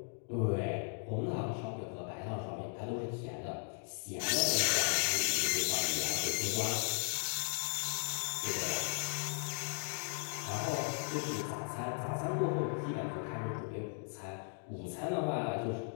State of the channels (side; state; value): right; silent; 53 dB below the other